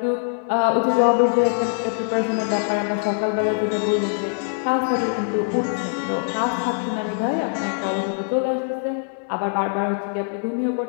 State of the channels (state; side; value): silent; right; digital silence